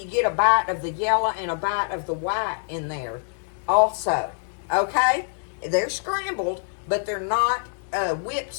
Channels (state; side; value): silent; right; 62 dB below the other